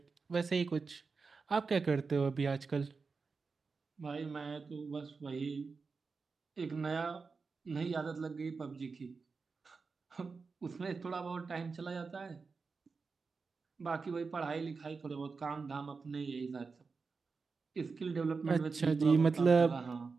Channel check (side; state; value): left; quieter; 4.7 dB